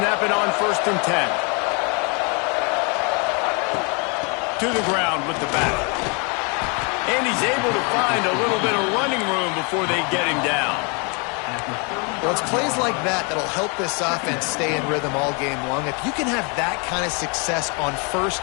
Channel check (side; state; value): right; quieter; 34.0 dB